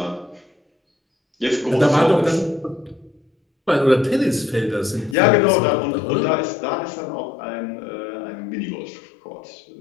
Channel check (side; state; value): right; drops out; at 5.2 s